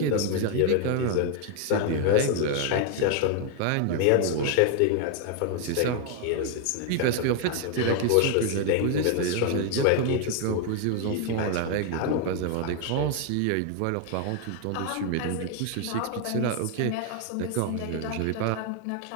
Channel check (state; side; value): different; both; correlation 0.00